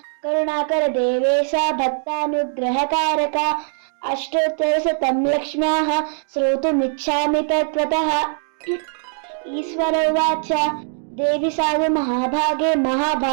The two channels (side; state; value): left; silent; digital silence